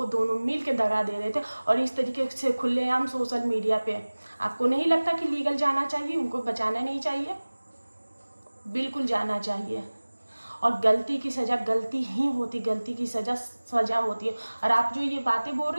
दोनों मिल के दगा दे रहे थे, और इस तरीके से खुलेआम सोशल मीडिया पे। आपको नहीं लगता कि लीगल जाना चाहिए, उनको बचाना नहीं चाहिए? बिल्कुल जाना चाहिए। और गलती की सज़ा गलती ही होती, गलती की सज़ा सज़ा होती है। और आप जो ये बातें बोल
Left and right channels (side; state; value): both; inverted; correlation -1.00